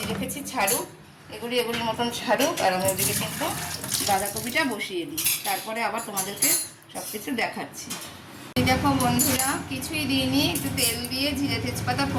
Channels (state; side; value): identical; both; correlation 1.00